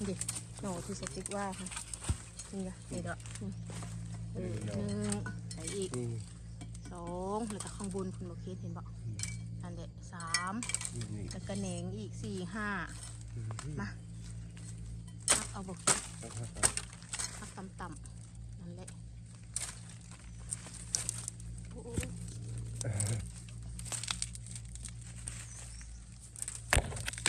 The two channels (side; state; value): both; identical; correlation 1.00